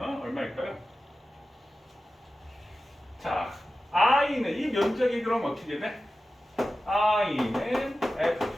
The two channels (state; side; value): normal; both; correlation 0.94